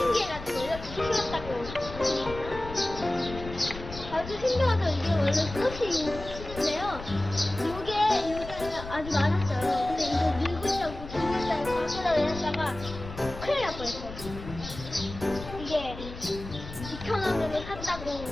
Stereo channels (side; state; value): left; noise; rumble, 12 dB below the sound